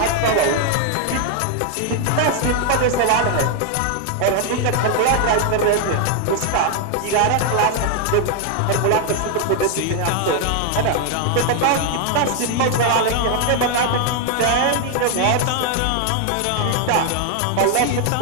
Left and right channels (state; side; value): different; both; correlation 0.00